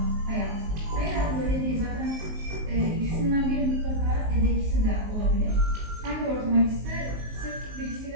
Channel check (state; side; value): late; left; 19 ms